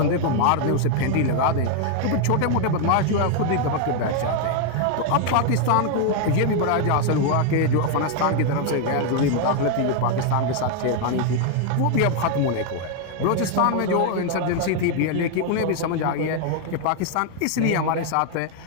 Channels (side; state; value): both; different; correlation 0.00